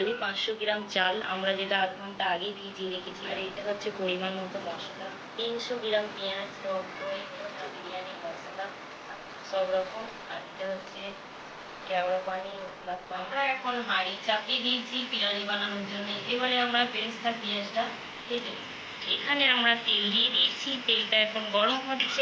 500 গ্রাম চাল আমরা যেটা আধ ঘন্টা আগে ভিজিয়ে রেখেছি, আর এটা হচ্ছে পরিমাণ মতো মশলা, 300 গ্রাম পেঁয়াজ, টক দই, বিরিয়ানি মশলা সব রকম, আর এটা হচ্ছে কেওড়া পানি। আমরা এখন হাঁড়ি চাপিয়ে দিয়েছি বিরিয়ানি বানানোর জন্য। এবারে আমরা বেরেস্তা পেঁয়াজটা ভেজে নেব। এখানে আমরা তেল দিয়ে দিয়েছি, তেলটা এখন গরম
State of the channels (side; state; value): both; identical; correlation 1.00